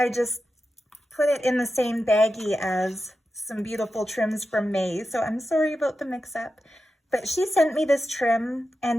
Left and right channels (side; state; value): both; normal; correlation 0.90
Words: just put it in the same baggie as some beautiful trims from May, so I'm sorry about the mix-up. But she sent me this trim,